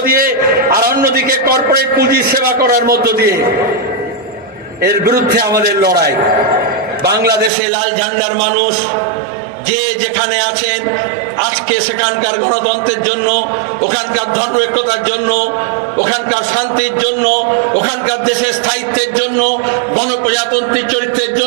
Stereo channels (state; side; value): drops out; left; at 7.5 s